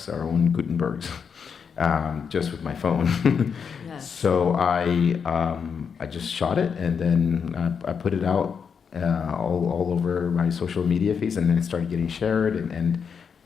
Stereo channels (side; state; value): right; quieter; 6.5 dB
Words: our own Gutenbergs, just with my phone. Yes. So I just shot it, and then I put it out all over my social media feeds, and then it started getting shared, and